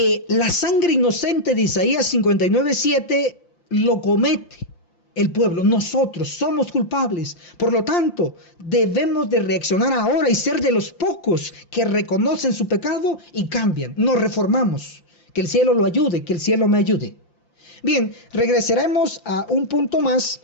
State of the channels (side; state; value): right; late; 5.8 ms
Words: la sangre inocente de Isaías 59:7 lo comete el pueblo. Nosotros somos culpables. Por lo tanto, debemos de reaccionar ahora y ser de los pocos que reconocen su pecado y cambian. Nos reformamos. Que el cielo lo ayude, que el cielo me ayude. Bien, regresaremos a un punto más.